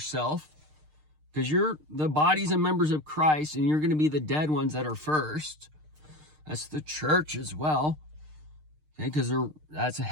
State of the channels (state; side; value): late; left; 6.6 ms